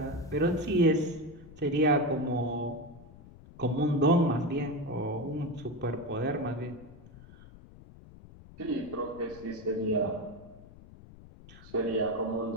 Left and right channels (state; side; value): noise; left; rumble, 20 dB below the sound